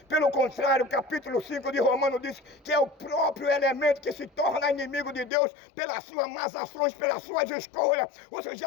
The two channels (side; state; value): right; drops out; at 5.3 s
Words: Pelo contrário, o capítulo 5 de Romanos diz que é o próprio elemento que se torna inimigo de Deus pelas suas más ações, pelas suas escolhas. Você